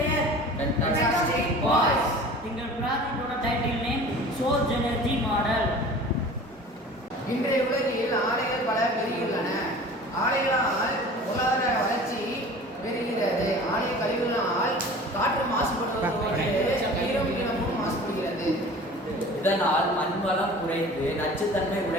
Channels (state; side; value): normal; both; correlation 0.42